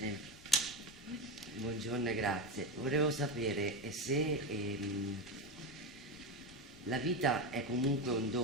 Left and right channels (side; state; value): both; normal; correlation 0.16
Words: Buongiorno e grazie. Volevo sapere se la vita è comunque un